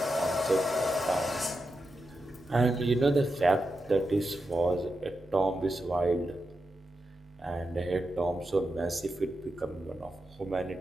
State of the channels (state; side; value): normal; both; correlation 0.88